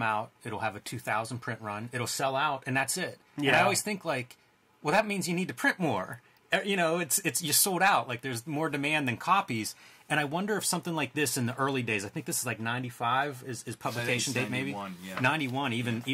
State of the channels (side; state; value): both; identical; correlation 1.00